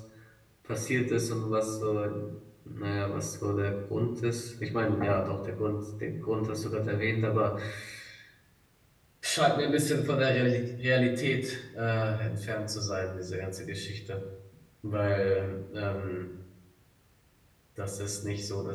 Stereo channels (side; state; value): both; identical; correlation 1.00